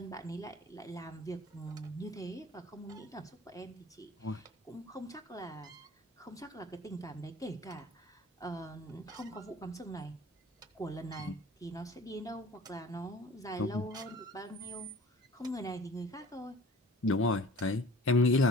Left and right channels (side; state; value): both; normal; correlation 0.45